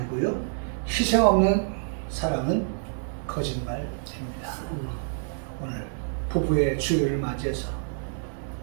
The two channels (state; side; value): silent; left; 60 dB below the other